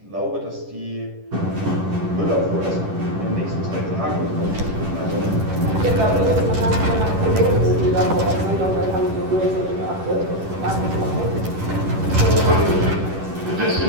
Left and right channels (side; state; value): left; late; 10 ms